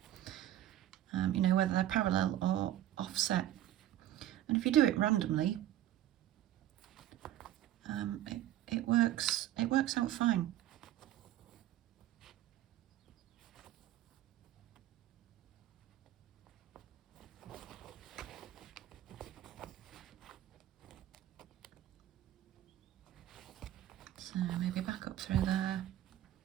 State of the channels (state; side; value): quieter; left; 13.0 dB